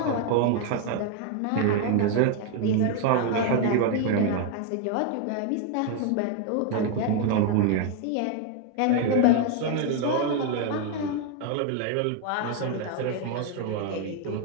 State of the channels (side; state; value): both; different; correlation 0.01